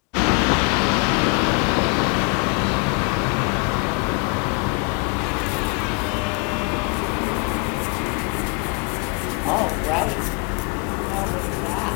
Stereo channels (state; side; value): quieter; right; 34.9 dB